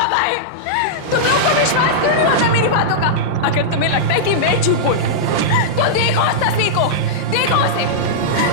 है। तुम लोगों को विश्वास क्यों नहीं होता मेरी बातों का? अगर तुम्हें लगता है कि मैं झूठ बोल रही हूं, तो देखो उस तस्वीर को, देखो उसे,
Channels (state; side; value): late; right; 5.8 ms